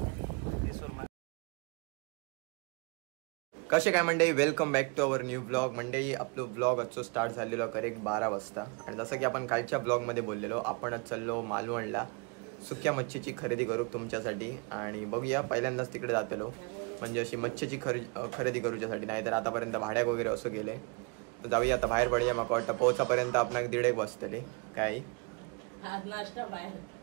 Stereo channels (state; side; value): quieter; left; 31.8 dB